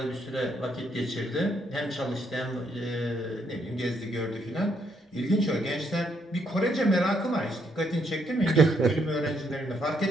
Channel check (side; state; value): both; normal; correlation 0.74